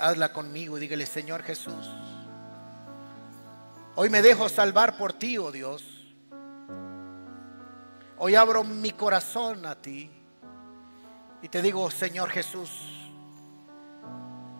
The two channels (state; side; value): inverted; both; correlation -1.00